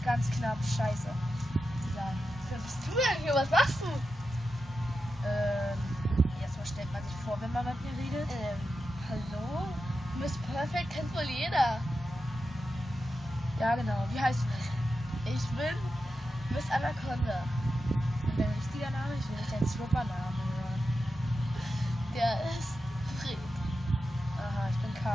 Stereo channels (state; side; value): normal; both; correlation 0.90